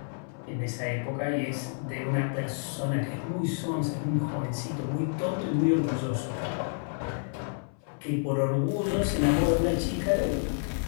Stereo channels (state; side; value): silent; right; 58 dB below the other